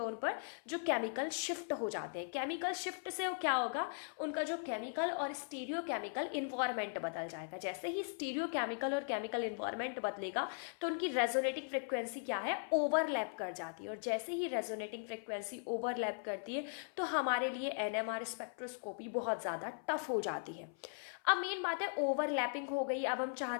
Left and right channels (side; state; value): right; silent; 52 dB below the other